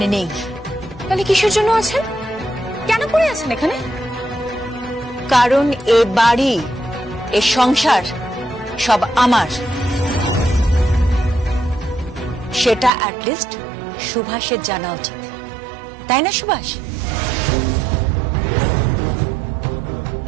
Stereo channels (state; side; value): drops out; left; at 12.9 s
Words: নেই। তাহলে কিসের জন্য আছেন? কেন পড়ে আছেন এখানে? কারণ এ বাড়ি, এ সংসার সব আমার। সেটা অ্যাটলিস্ট সুভাষের জানা উচিত, তাই না সুভাষ?